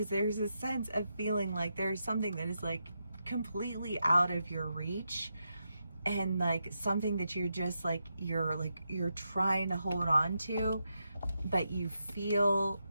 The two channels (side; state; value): both; inverted; correlation -0.85